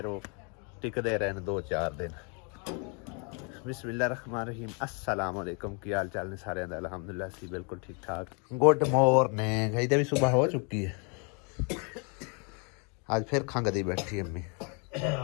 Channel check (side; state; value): right; quieter; 36.0 dB